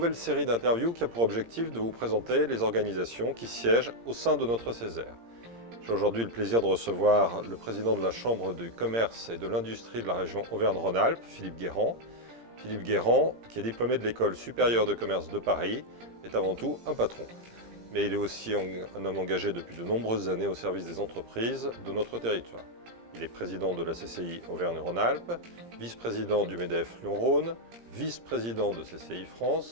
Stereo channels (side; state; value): left; late; 17 ms